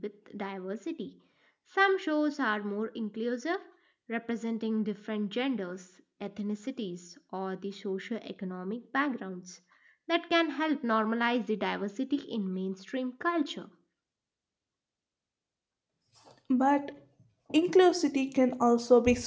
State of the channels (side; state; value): both; identical; correlation 1.00